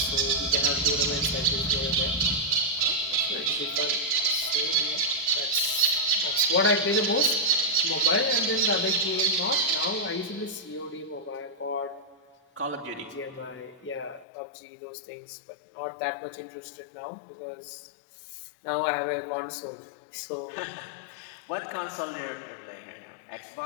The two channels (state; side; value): drops out; right; at 14.2 s